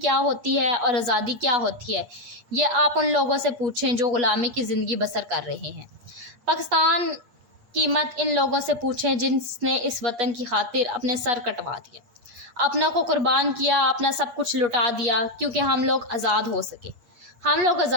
होती है और आज़ादी क्या होती है, ये आप उन लोगों से पूछें जो ग़ुलामी की ज़िंदगी बसर कर रहे हैं। पाकिस्तान कीमत इन लोगों से पूछें जिनने इस वतन की खातिर अपने सर कटवा दिए, अपनों को कुर्बान किया, अपना सब कुछ लुटा दिया, क्योंकि हम लोग आज़ाद हो सके, हम लोग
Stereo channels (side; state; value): left; late; 8.5 ms